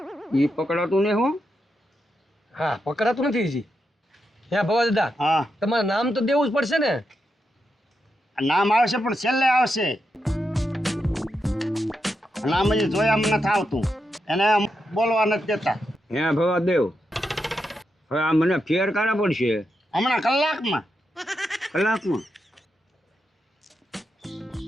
ઈ પકડાતું ને હું. હા, પકડાતું નથી હજી. હે ભવા દાદા, હા, તમારે નામ તો દેવું જ પડશે ને. નામ આવશે પણ છેલ્લે આવશે. નામ હજી જોયા નથી આવતું, એને બોલવા નથી દેતા. હે ભવા દેવ, હવે આ મને ફેર કાઢા પડશે હમણાં કલાકમાં. કલાકમાં.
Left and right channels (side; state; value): both; normal; correlation 0.85